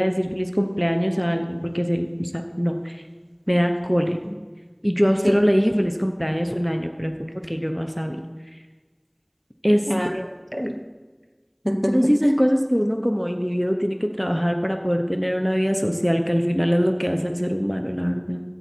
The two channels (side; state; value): both; identical; correlation 1.00